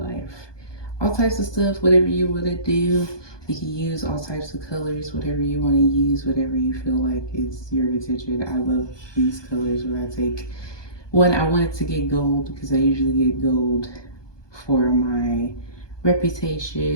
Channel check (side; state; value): right; late; 1.2 ms